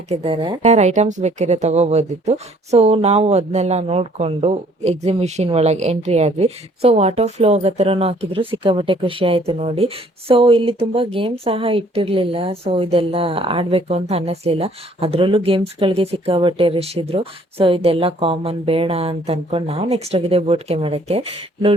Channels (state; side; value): normal; both; correlation 0.60